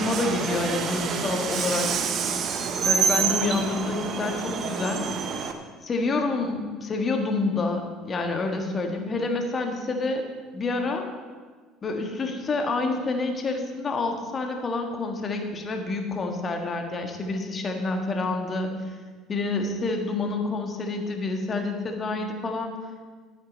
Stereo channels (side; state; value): both; normal; correlation 0.58